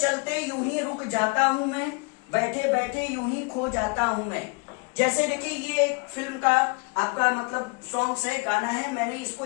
यूं ही रुक जाता हूं मैं, बैठे बैठे यूं ही खो जाता हूं मैं। जैसे देखिए ये एक फिल्म का आपका मतलब सॉन्ग्स है, गाना है, मैंने इसको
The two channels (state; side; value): quieter; right; 31.0 dB